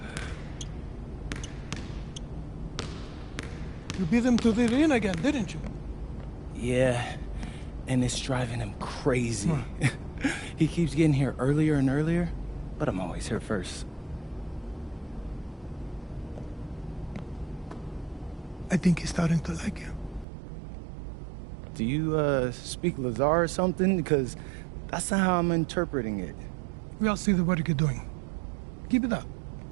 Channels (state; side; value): drops out; left; at 20.2 s